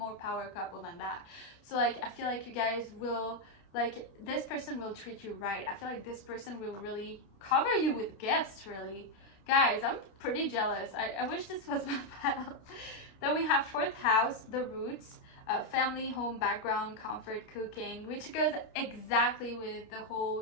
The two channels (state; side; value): late; right; 29 ms